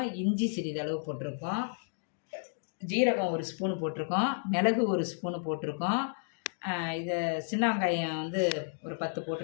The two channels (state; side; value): silent; right; digital silence